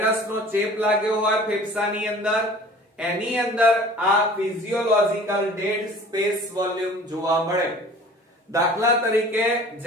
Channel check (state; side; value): normal; both; correlation 0.46